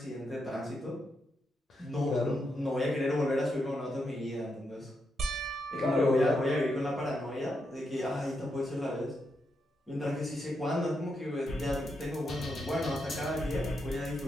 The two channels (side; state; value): both; normal; correlation 0.82